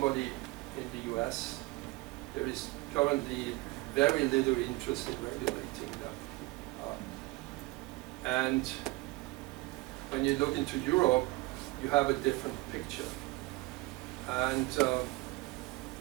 in the US, there is currently very little interest in regulating them. And when you look into Europe, you have a different picture. And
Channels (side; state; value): left; quieter; 21.6 dB